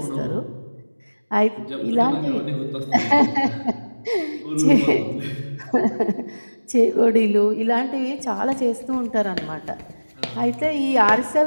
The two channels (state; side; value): inverted; both; correlation -1.00